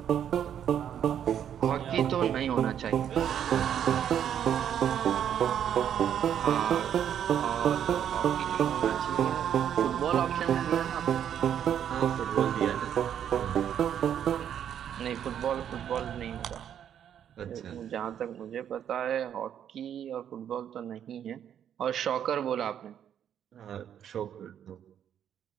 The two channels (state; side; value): quieter; left; 9.4 dB